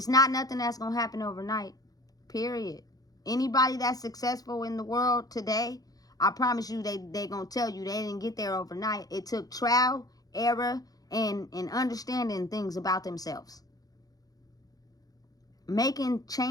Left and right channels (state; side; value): late; right; 0.18 ms